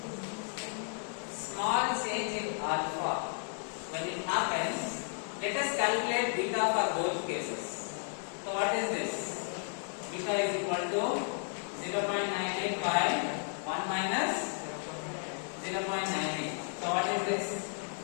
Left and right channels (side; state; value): right; silent; 55 dB below the other